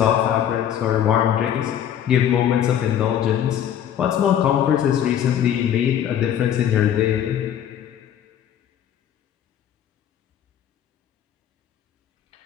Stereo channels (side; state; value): right; quieter; 10.0 dB